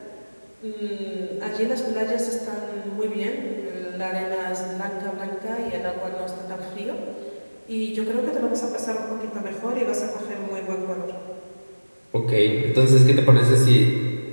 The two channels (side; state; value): both; inverted; correlation -1.00